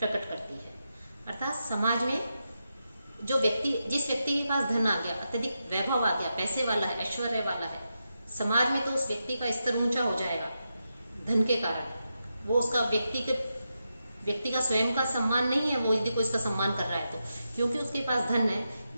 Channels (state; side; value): inverted; both; correlation -0.87